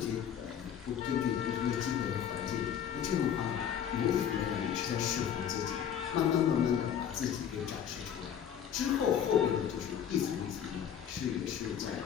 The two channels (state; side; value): quieter; right; 8.9 dB